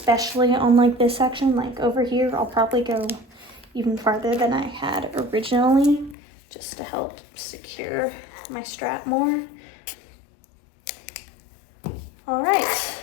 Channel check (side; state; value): right; drops out; at 6.2 s